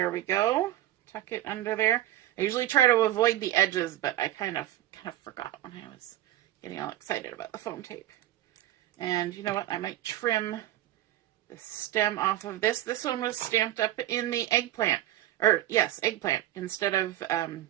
we go. Tuck it under there. I usually try to avoid the edges, but I kind of forgot when I was getting all excited about the foam tape. And you know what? I might trim the stem off of this. This one was stamped up in the eggplant. Or, yes, eggplant instead of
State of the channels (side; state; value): left; quieter; 13.8 dB